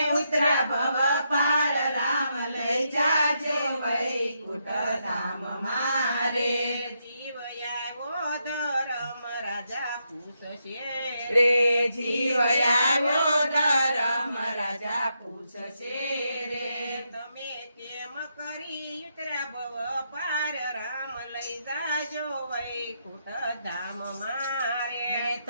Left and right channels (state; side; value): inverted; both; correlation -0.81